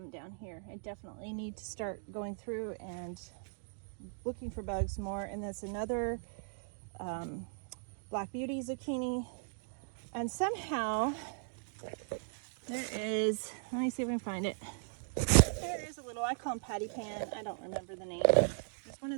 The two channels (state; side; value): silent; left; digital silence